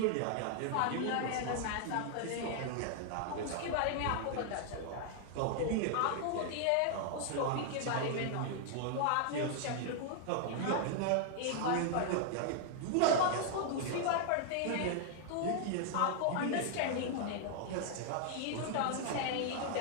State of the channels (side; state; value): both; different; correlation 0.00